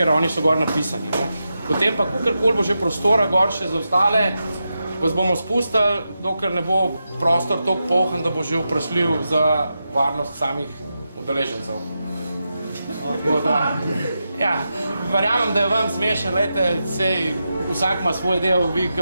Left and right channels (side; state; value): both; inverted; correlation -0.89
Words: oni so gor napisani. Potem pa, kakorkoli bo že prostora gor še za ostale, vas bomo spustili, dokler ne bo prostor toliko polhan, da bo že vprašljiv za varnost samih udeležencev. Ja, verjamem, da je vam smešen, sej vsak ima svoj del, vi,